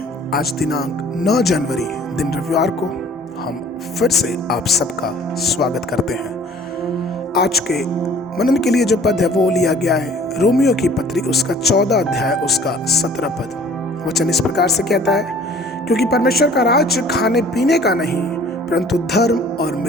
आज दिनांक 9 जनवरी दिन रविवार को हम फिर से आप सबका स्वागत करते हैं। आज के मनन के लिए जो पद है वो लिया गया है रोमियो की पत्री उसका 14 अध्याय उसका 17 पद। वचन इस प्रकार से कहता है, क्योंकि परमेश्वर का राज्य खाने पीने का नहीं परंतु धर्म और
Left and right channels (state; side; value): normal; both; correlation 0.52